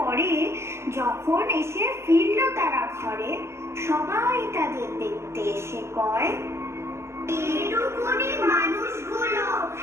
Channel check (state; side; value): late; left; 0.13 ms